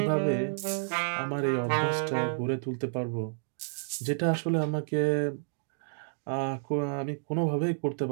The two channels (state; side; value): silent; left; digital silence